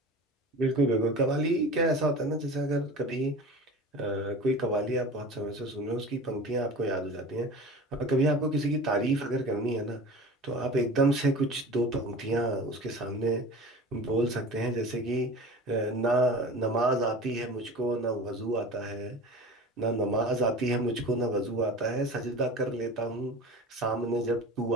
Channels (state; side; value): normal; both; correlation 0.36